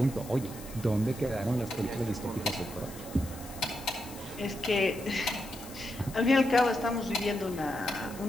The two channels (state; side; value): noise; left; hiss, 16 dB below the sound